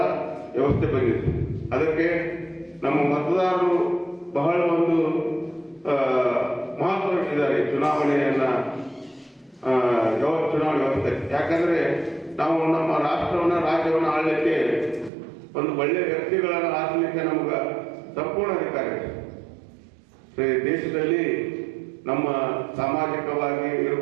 ವ್ಯವಸ್ಥೆ ಬಂದಿದೆ. ಅದಕ್ಕೆ ನಮ್ಮ ಮತದಾರರು ಬಹಳ ಒಂದು ಮಹತ್ವ ಇಟ್ಟಿದ್ದಾರೆ ಚುನಾವಣೆಯನ್ನು, ಚುನಾವಣೆ ವ್ಯವಸ್ಥೆ. ಯಾಕಂದರೆ ನಾವು ನಮ್ಮ ರಾಜ್ಯವನ್ನು ಆಳಲಿಕ್ಕೆ ಒಂದು ಒಳ್ಳೆಯ ವ್ಯಕ್ತಿಗಳನ್ನು ಆರಿಸಲಿಕ್ಕೆ ನಮ್ಗೆ ಸಂಪೂರ್ಣ ಅಧಿಕಾರ ಇದೆ. ದೇಶದಲ್ಲಿ ನಮ್ಮ ಸಾಮಾಜಿಕವಾಗಿ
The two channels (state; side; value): drops out; left; at 15.1 s